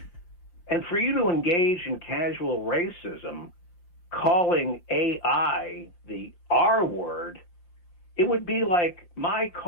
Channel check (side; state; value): right; late; 5.7 ms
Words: And for you to engage in casual racism, calling AI the R word, it would be like my